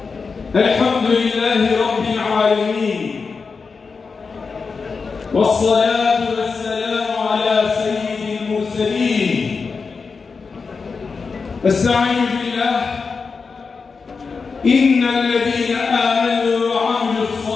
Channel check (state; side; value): quieter; right; 4.9 dB